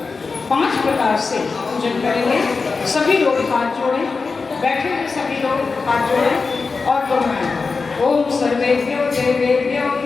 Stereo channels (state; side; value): quieter; right; 4.4 dB